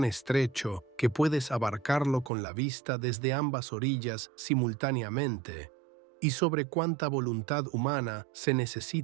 estrecho que puedes abarcarlo con la vista desde ambas orillas simultáneamente, y sobre cuánta voluntad humana se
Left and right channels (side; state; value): left; drops out; at 2.3 s